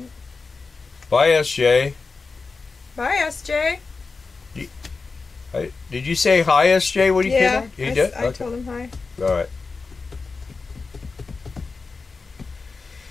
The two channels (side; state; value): right; quieter; 4.3 dB